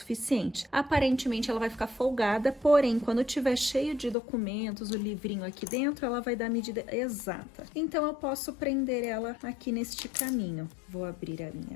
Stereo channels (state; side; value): drops out; right; at 4.2 s